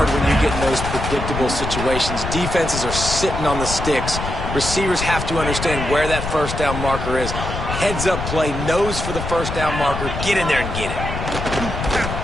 when you get in those predictable situations. Defenses are sitting on the sticks. Receivers have to understand where that first down marker is. Heads up play, nose for the first down marker. Get in there and get it.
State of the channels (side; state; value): left; noise; rumble, 5 dB below the sound